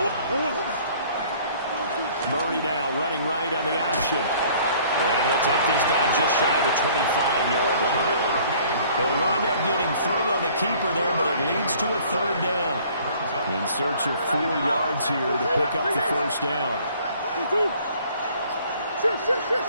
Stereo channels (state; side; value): inverted; both; correlation -0.55